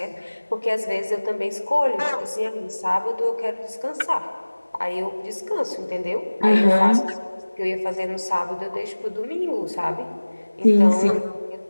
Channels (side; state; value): both; inverted; correlation -1.00